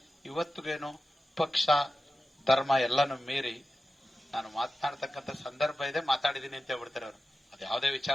ಇವತ್ತಿಗೇನು ಪಕ್ಷ ಧರ್ಮ ಎಲ್ಲಾನು ಮೀರಿ ನಾನು ಮಾತನಾಡ್ತಕ್ಕಂಥ ಸಂದರ್ಭ ಇದೆ, ಮಾತಾಡಿದೀನಿ ಅಂತ ಹೇಳ್ಬಿಡ್ತಾರೆ ಅವರು. ಅದು ಯಾವುದೇ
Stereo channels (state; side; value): normal; both; correlation 0.93